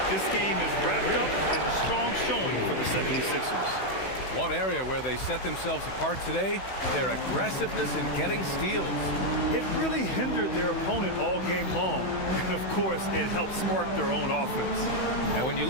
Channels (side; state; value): right; late; 16 ms